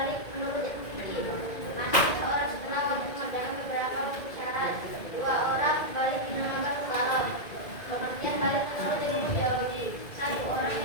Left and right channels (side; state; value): right; late; 2.0 ms